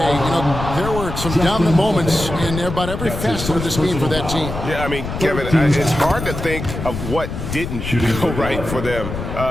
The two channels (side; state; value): left; noise; rumble, 6 dB below the sound